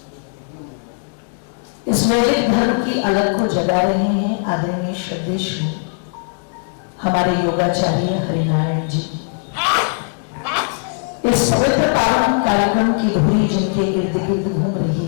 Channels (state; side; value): silent; right; 62 dB below the other